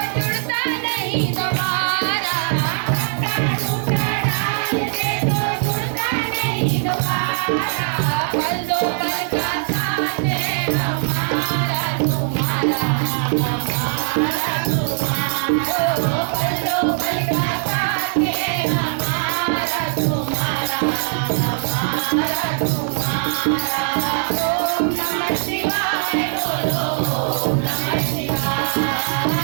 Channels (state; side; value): silent; left; 65 dB below the other